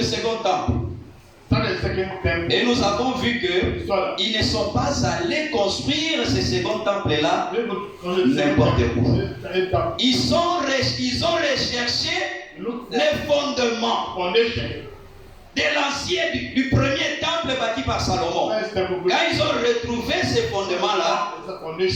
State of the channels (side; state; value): both; identical; correlation 1.00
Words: second temple. Et nous avons vu qu'ils ne sont pas allés construire ce second temple-là n'importe où. Ils ont recherché les fondements de l'ancien, du premier temple bâti par Salomon. Quand ils ont retrouvé ces fondements-là,